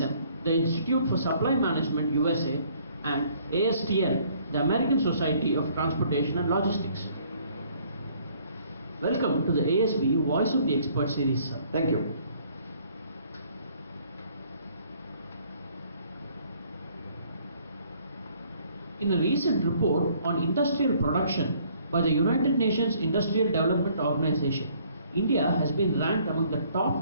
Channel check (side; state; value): both; inverted; correlation -0.61